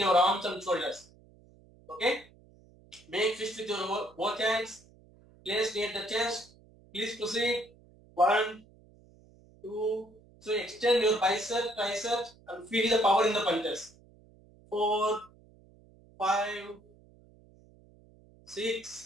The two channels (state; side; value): noise; right; hum, 27 dB below the sound